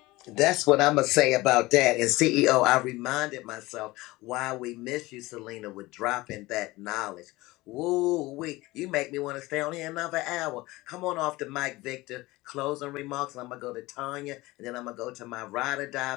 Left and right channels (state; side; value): quieter; right; 20.1 dB